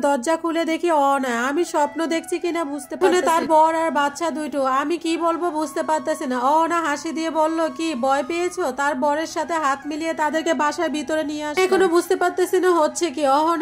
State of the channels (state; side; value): identical; both; correlation 1.00